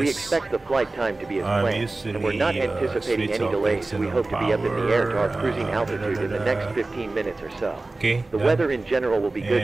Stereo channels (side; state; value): left; quieter; 3.2 dB